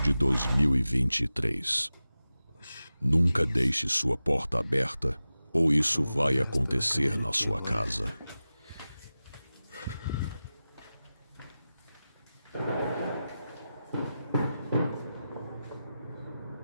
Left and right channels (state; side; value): inverted; both; correlation -0.94